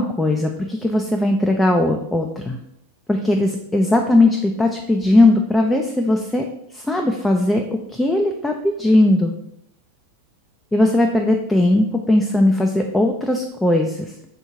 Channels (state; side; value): normal; both; correlation 0.83